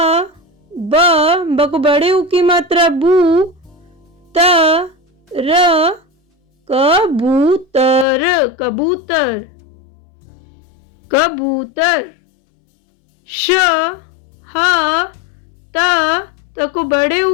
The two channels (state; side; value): drops out; right; at 8.1 s